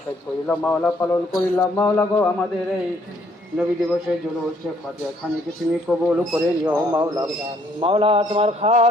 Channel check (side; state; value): both; normal; correlation 0.66